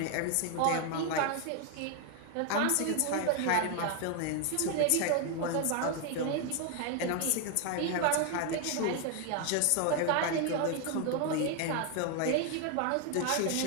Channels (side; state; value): both; different; correlation 0.00